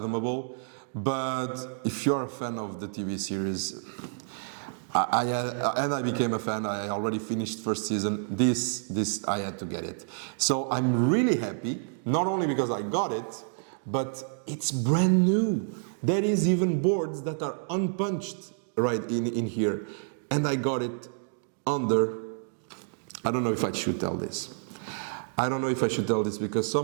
But if you're a fan of the TV series, I became a fan. I already finished first season. This I had to get it. So I'm really happy, not only because I got it, but it's brand new. There is even boards that are unpunched right in here. And I got it under, I don't know if I should tell this. I don't know if I should tell this because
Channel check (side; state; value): left; silent; digital silence